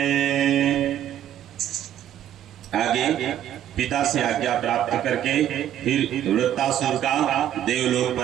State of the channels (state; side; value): quieter; left; 11.0 dB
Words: आगे पिता से आज्ञा प्राप्त करके फिर वृत्तासुर का देवलोक